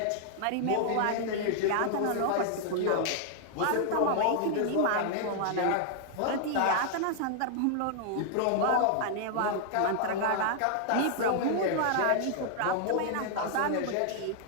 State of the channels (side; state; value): both; different; correlation -0.01